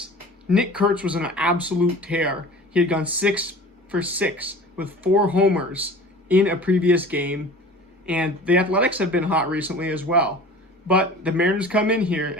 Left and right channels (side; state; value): both; normal; correlation 0.41